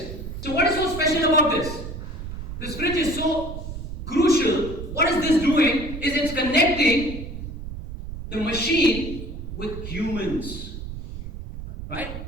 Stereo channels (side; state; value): right; noise; rumble, 8 dB below the sound